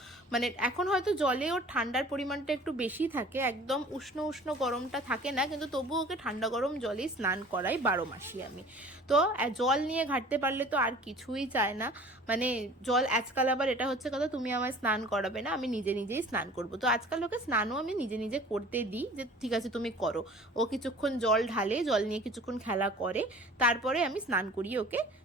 মানে এখন হয়তো জলে ওর ঠান্ডার পরিমাণটা একটু বেশি থাকে, একদম উষ্ণ উষ্ণ গরমটা থাকে না, কিন্তু তবুও ওকে ঠান্ডা গরম জলেই স্নান করাই 12 মাসই আমি। তো জল নিয়ে ঘাটতে পারলে তো আর কিছুই চায় না, মানে জল আজকাল আবার এটা হচ্ছে কথা তুমি আমায় স্নান করাবে না, আমি নিজে নিজেই স্নান করব। তো আজকাল ওকে স্নানও আমি নিজে নিজে করতে দিই, যে ঠিক আছে তুমি করো। ও কিছুক্ষণ জল ঢালে, জল নিয়ে কিছুক্ষণ খেলা করে, তারপরে আমি স্নান করিয়ে ওকে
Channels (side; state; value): both; normal; correlation 0.46